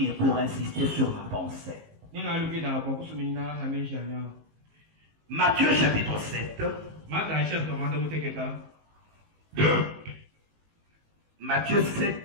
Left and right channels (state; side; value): late; left; 19 ms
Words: pour insister sur ma pensée. Matthieu chapitre 7. Matthieu